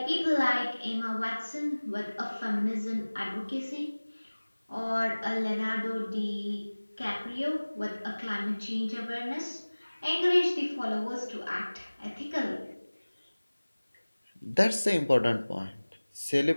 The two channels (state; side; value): inverted; both; correlation -1.00